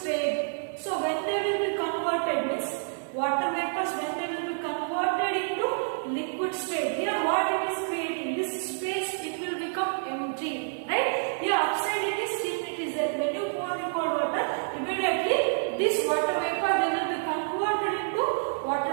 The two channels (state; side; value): silent; left; digital silence